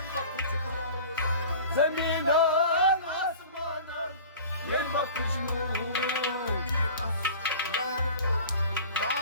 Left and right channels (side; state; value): both; inverted; correlation -0.41